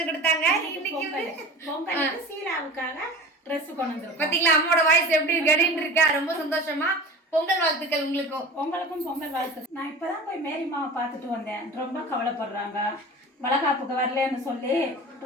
கொடுத்தாங்க. இன்னைக்கு வந்து பொங்கலுக்கு சீலாவுக்காக ட்ரெஸ் கொண்டு வந்திருக்கோம். பாத்தீங்களா அம்மாவோட வாய்ஸ் எப்படி கடின்னு இருக்கா. ரொம்ப சந்தோஷமா. பொங்கல் வாழ்த்துக்கள் உங்களுக்கும் பொங்கல் வாழ்த்து. நான் இப்பதான் போய் மேரிமாவை பார்த்துட்டு வந்தேன். ரொம்ப கவலைப்படுறாங்க. வளகாப்புக்கு வரலன்னு சொல்லி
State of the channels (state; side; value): normal; both; correlation 0.36